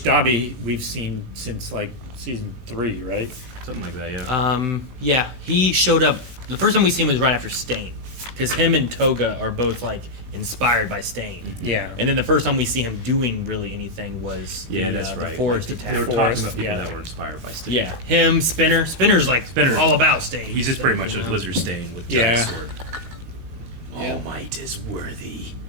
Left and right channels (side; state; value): left; late; 19 ms